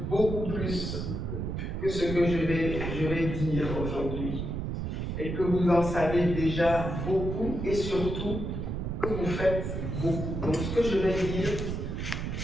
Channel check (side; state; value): right; noise; rumble, 3 dB below the sound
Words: beaucoup plus que ce que je vais dire aujourd'hui. Et que vous en savez déjà beaucoup et surtout que vous faites beaucoup. Donc ce que je vais dire,